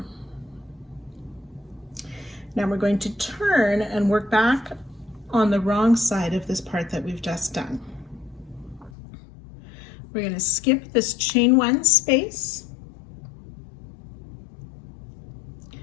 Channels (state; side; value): drops out; right; at 8.9 s